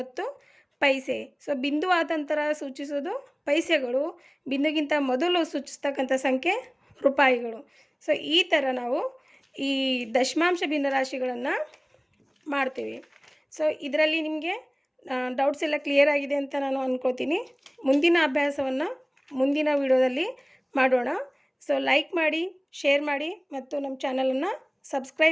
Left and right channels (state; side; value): identical; both; correlation 1.00